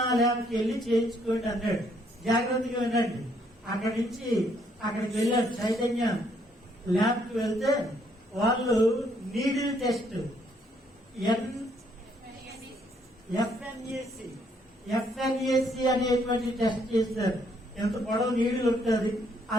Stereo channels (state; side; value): normal; both; correlation 0.69